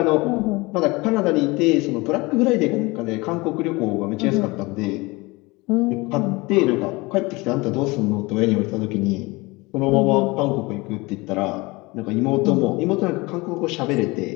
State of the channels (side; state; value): right; quieter; 23.7 dB